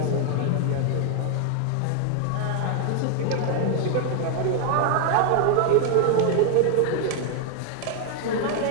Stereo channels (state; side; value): different; both; correlation 0.00